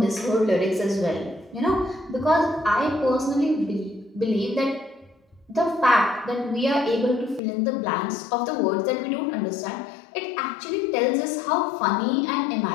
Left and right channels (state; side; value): drops out; right; at 7.4 s